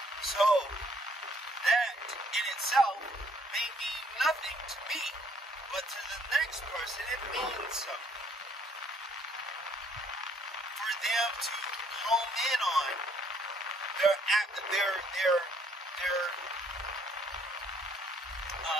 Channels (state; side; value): normal; both; correlation 0.65